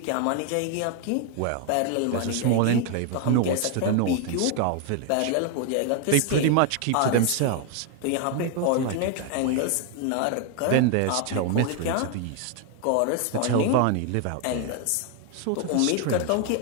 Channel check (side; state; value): both; different; correlation 0.00